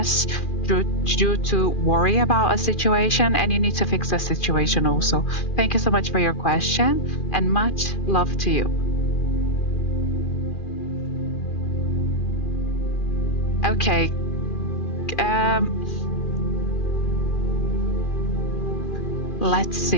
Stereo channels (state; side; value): late; right; 2.4 ms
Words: due to worry about a situation, and you need to fix the situation also. Thank you so much for your question, and much love to you. Okay. Let's